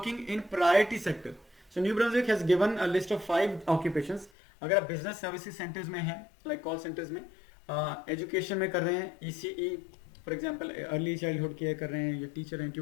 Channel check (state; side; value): drops out; right; at 4.3 s